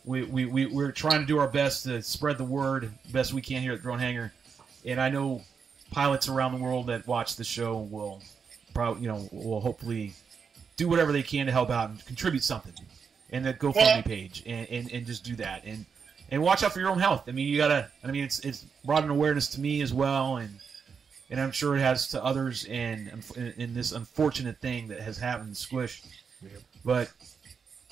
we're trying to do our best to spread the word best we can here at Drone Hangar, and I know pilots around the world that watch the show will probably will hopefully do whatever they can to help out and contribute something, and that GoFundMe page, and just do that, and watch out for your own health. I mean, you gotta. I mean, it's brought an awareness to me as well, and I'm sure it has to others, and in this unfortunate thing that has happened to Squish, but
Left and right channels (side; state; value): left; quieter; 6.1 dB